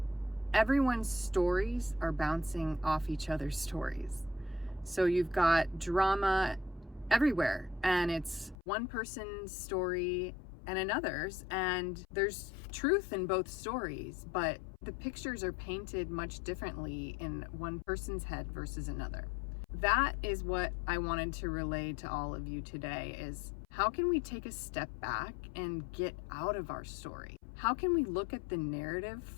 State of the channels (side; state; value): right; drops out; at 8.6 s